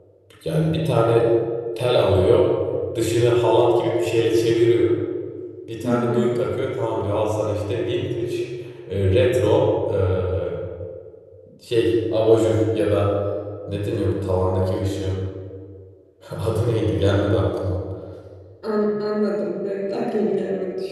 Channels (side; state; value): both; identical; correlation 1.00